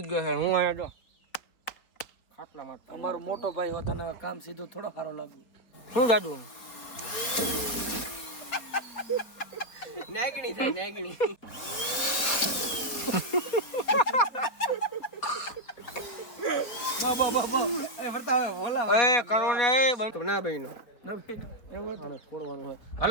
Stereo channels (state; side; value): late; right; 4.2 ms